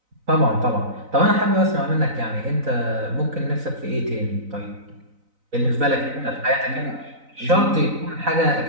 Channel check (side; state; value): left; late; 4.0 ms